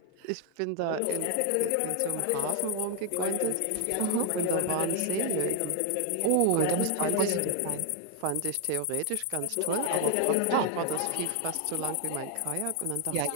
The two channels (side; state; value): both; different; correlation 0.00